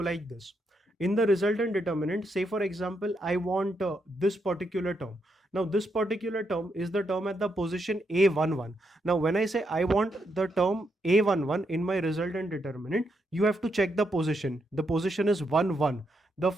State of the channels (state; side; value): normal; both; correlation 0.80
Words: this. In the resultant determinant, say for example, I want this particular term. Now this particular term is the term at the position A11. Now when I say I want the term A11 in my resultant determinant, you have to check the position. The position is 1, 1. The